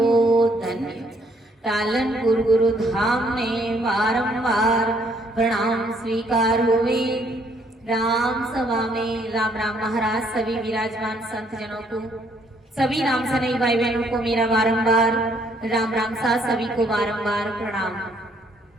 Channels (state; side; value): normal; both; correlation 0.67